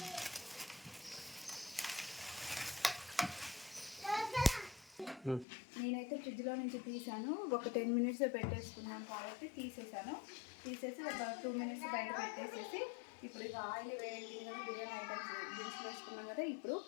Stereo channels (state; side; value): drops out; right; at 5.5 s